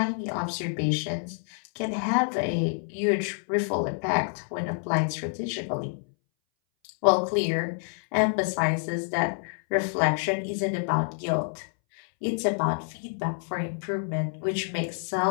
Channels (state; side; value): silent; right; 60 dB below the other